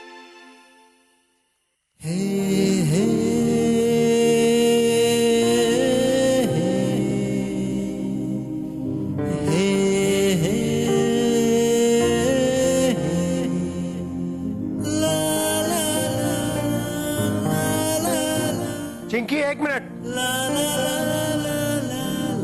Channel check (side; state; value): both; identical; correlation 1.00